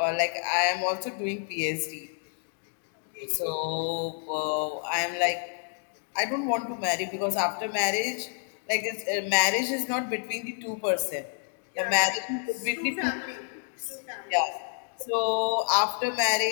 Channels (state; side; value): silent; right; 57 dB below the other